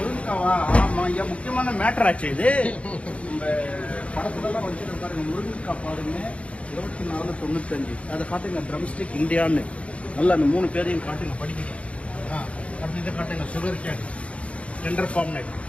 ஆமாம் ஐயா, முக்கியமான மேட்டர் ஆச்சு இது. இந்த படத்துலலாம் வச்சு பாருங்க, முருங்கைக்காய் பாருங்க 24.95. அதை காட்டுங்க, ட்ரம்ஸ்டிக் இந்தியான்னு நல்லா அந்த 3 பேரையும் காட்டுங்க, படிக்க. அடுத்து இதை காட்டுங்க, சுகர் கேன் டெண்டர் ஃபார்ம்.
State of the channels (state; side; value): late; right; 0.062 ms